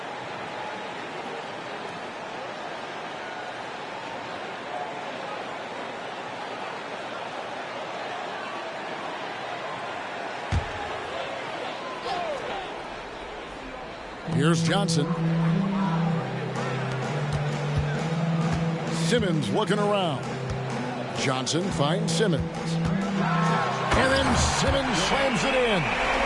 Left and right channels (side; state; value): both; identical; correlation 1.00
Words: Here's Johnson. Simmons looking around. Johnson finds Simmons. And then Simmons slams it in.